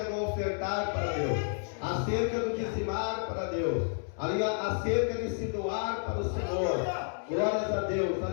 do ofertar para Deus, acerca do dizimar para Deus, acerca de se doar para o Senhor. Glórias a Deus,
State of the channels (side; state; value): right; silent; 57 dB below the other